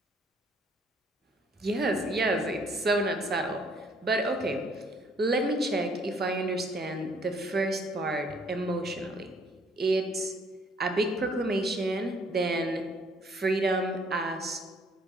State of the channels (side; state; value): both; normal; correlation 0.62